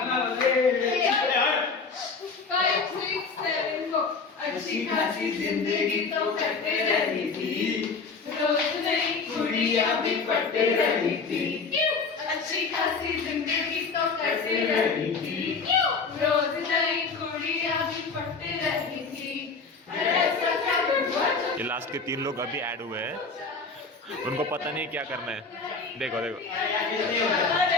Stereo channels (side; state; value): right; quieter; 4.6 dB